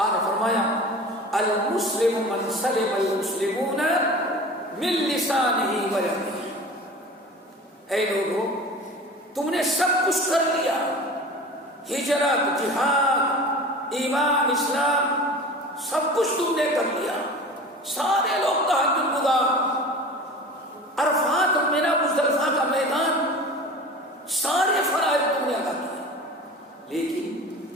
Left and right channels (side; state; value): both; normal; correlation 0.37